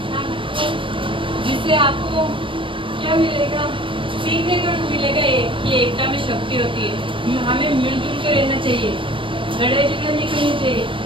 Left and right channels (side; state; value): left; late; 0.25 ms